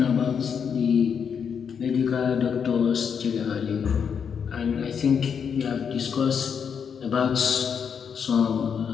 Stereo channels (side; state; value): right; quieter; 7.0 dB